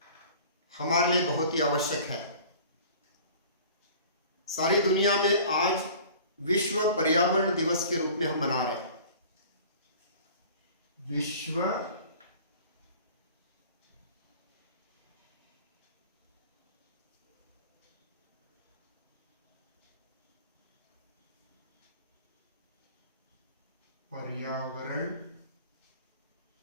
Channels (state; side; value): inverted; both; correlation -0.45